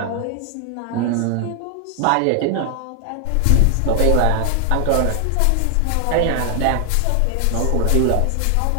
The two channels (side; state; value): both; different; correlation 0.00